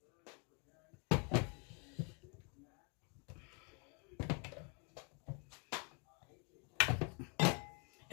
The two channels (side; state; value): right; quieter; 35.3 dB